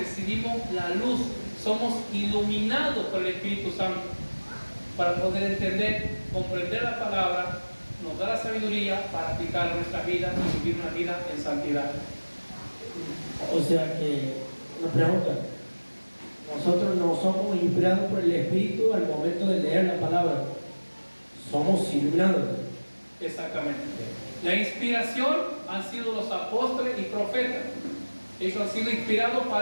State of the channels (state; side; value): inverted; both; correlation -1.00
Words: la luz, somos iluminados por el Espíritu Santo para poder entender, comprender la palabra nos da la sabiduría para aplicar a nuestra vida y vivir una vida en santidad. O sea que, una pregunta, nosotros no somos inspirados por el Espíritu al momento de leer la palabra, somos iluminados. Exactamente. La inspiración han sido los apóstoles y profetas. Ellos han sido inspirados